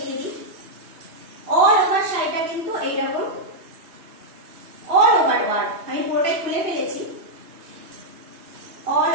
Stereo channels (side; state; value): left; late; 2.8 ms